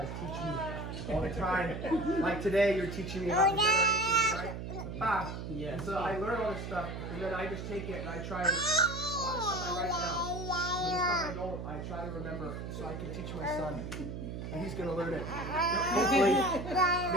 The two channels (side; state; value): right; noise; hum, 7 dB below the sound